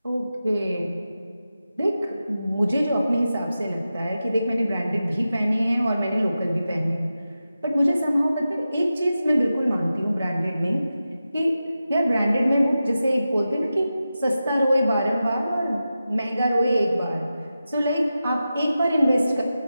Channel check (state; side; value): inverted; both; correlation -0.92